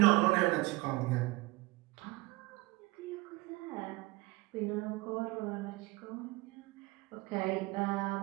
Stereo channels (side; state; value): left; quieter; 21.9 dB